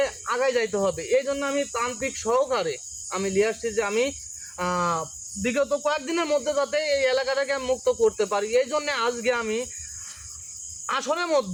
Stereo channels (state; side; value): identical; both; correlation 1.00